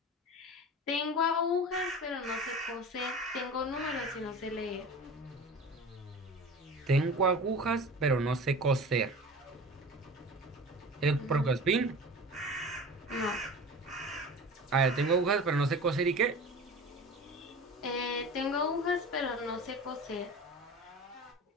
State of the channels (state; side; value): normal; both; correlation 0.36